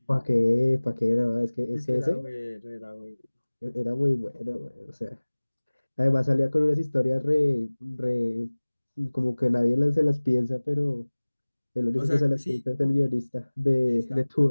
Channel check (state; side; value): inverted; both; correlation -1.00